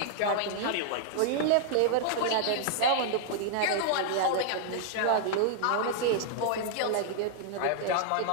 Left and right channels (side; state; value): both; different; correlation -0.01